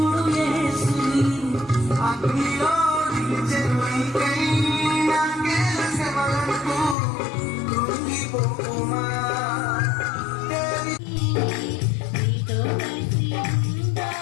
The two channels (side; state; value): right; drops out; at 7.0 s